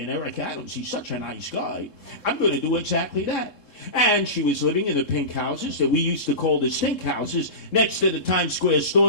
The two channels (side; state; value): right; late; 3.7 ms